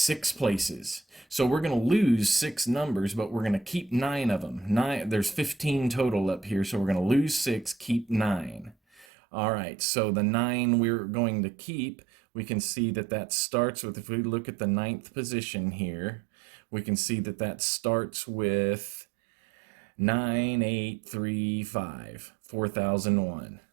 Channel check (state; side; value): drops out; left; at 9.1 s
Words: places. So we're going to lose 6 numbers, but we're going to keep 9 of them. There's 15 total up here, so we're going to lose 6, keep 9. All right, so the 9 we're going to keep, we can see that starts with, if we look at the 9th position here, we can see that starts with 9835, 4001.